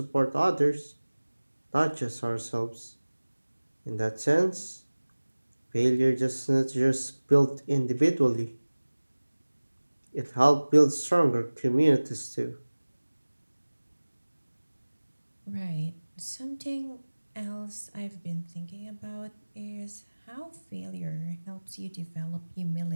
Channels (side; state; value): both; inverted; correlation -1.00